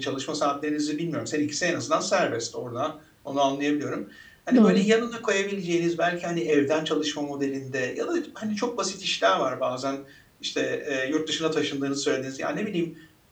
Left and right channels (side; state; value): both; identical; correlation 1.00